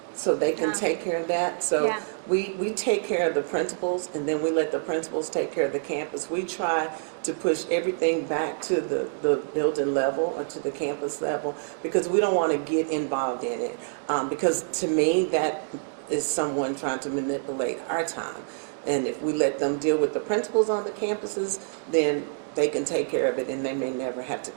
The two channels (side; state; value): left; silent; digital silence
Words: so they can take care of that. So we take care of the principals, and then we let the principals take care of the campus. We try to push everything back to the building level or to the campus level because we don't want to get involved in it. Because to me, that is someone trying to manipulate our time. And if we let them deal with the principals on the campuses, then they can take care of it and they may never have to